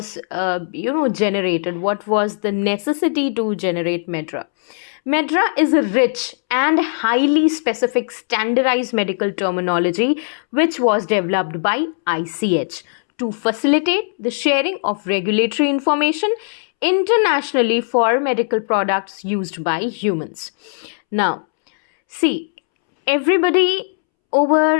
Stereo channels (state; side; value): silent; right; 67 dB below the other